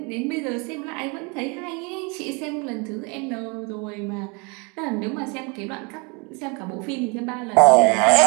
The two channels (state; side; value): quieter; left; 31.3 dB